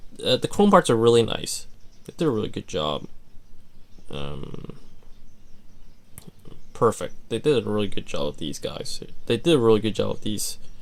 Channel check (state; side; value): identical; both; correlation 1.00